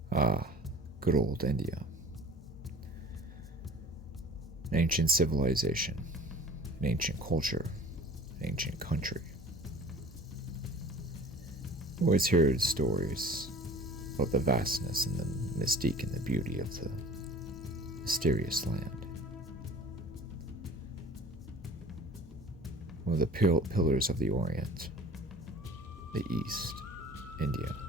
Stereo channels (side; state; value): both; normal; correlation 0.45